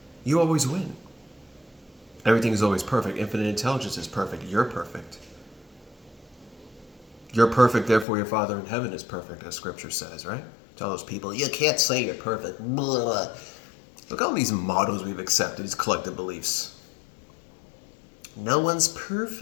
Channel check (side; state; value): right; drops out; at 8.1 s